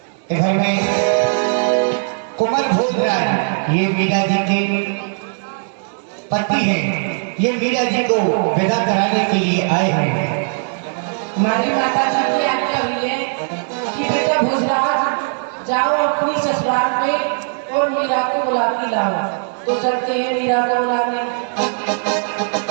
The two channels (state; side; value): silent; left; 67 dB below the other